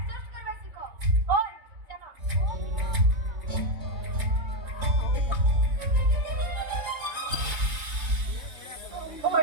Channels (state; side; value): late; left; 3.5 ms